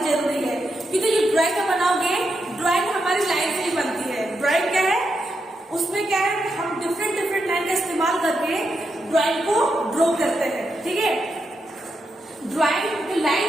जरूरी है। क्योंकि जो ड्राइंग बनाओगे, ड्राइंग हमारी लाइन से ही बनती है। ड्राइंग क्या है? उसमें क्या है, हम डिफरेंट लाइन का इस्तेमाल करके ड्राइंग को ड्रॉ करते हैं। ठीक है, ड्राइंग जो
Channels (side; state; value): both; normal; correlation 0.84